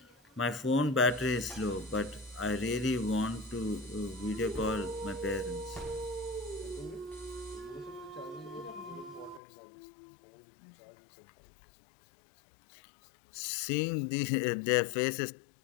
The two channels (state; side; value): drops out; right; at 9.4 s